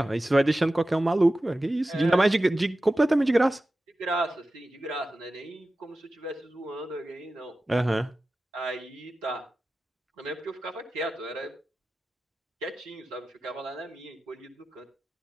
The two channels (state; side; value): normal; both; correlation 0.95